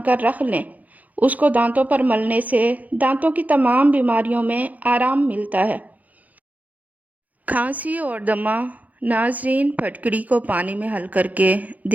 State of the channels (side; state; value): left; late; 0.078 ms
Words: کر رکھ لیں، اس کو دانتوں پر ملنے سے دانتوں کی تمام بیماریوں میں آرام ملتا ہے۔ کھانسی اور دمہ، ناظرین پھٹکڑی کو پانی میں حل کر کے